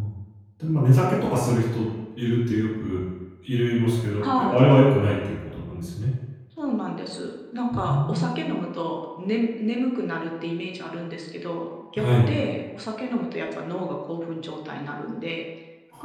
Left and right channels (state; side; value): identical; both; correlation 1.00